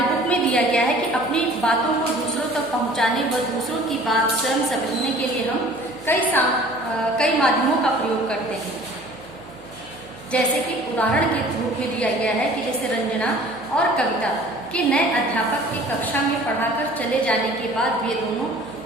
बुक में दिया गया है कि अपनी बातों को दूसरों तक पहुंचाने व दूसरों की बात स्वयं समझने के लिए हम कई माध्यमों का प्रयोग करते हैं। जैसे कि उदाहरण के रूप में दिया गया है कि जैसे रंजना और कविता के नए अध्यापक की कक्षा में पढ़ाकर चले जाने के बाद वे दोनों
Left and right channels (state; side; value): noise; right; hum, 26 dB below the sound